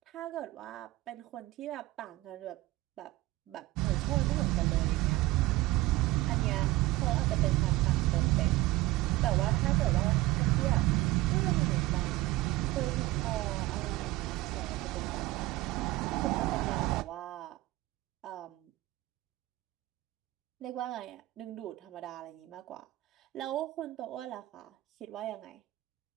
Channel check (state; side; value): quieter; left; 18.2 dB